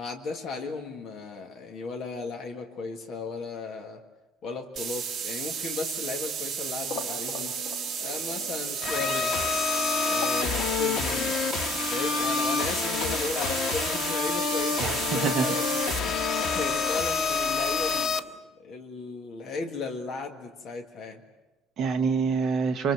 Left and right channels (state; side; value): normal; both; correlation 0.57